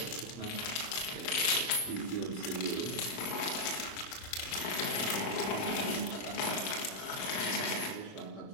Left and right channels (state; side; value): late; right; 27 ms